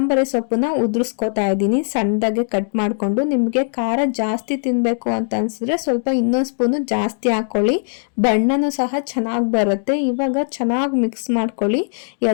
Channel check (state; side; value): silent; right; digital silence